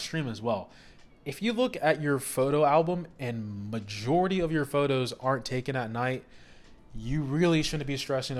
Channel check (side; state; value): both; identical; correlation 1.00